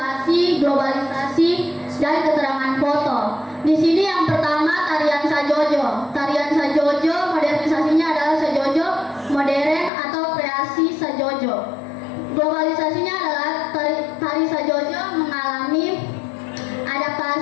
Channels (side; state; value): right; drops out; at 9.9 s